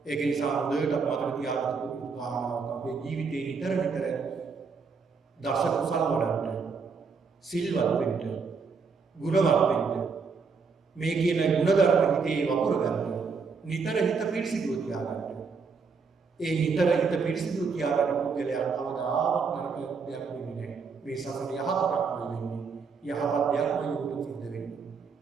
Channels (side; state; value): left; quieter; 5.1 dB